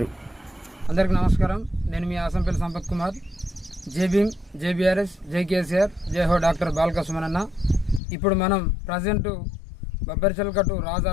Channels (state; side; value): drops out; right; at 8.0 s